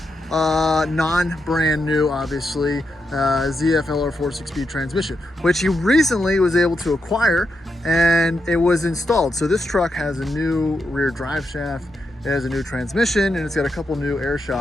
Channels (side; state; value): both; normal; correlation 0.84